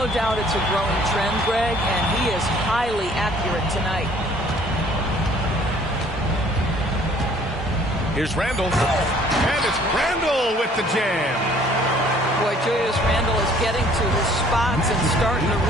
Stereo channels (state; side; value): normal; both; correlation 0.57